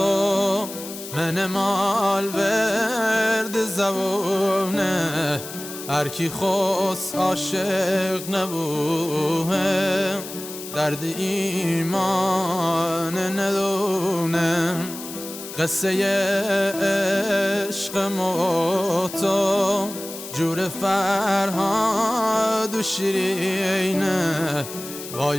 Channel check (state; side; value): noise; left; hiss, 11 dB below the sound